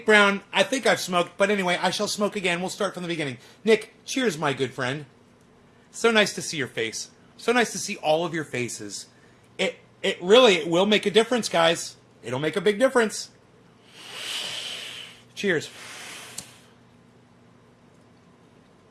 Brown, I think I've smoked, but anyway, I shall smoke again. We'll start from the beginning. Nick, cheers, my good friend. So nice to see your face. So nice to see all of your faces. It will make a difference, guys. It'll make a big difference. Cheers.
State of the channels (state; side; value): identical; both; correlation 1.00